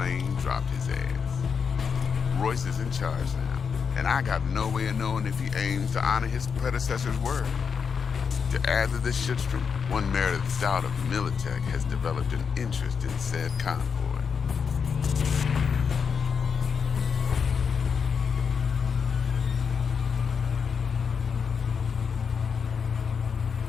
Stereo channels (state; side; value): quieter; right; 6.3 dB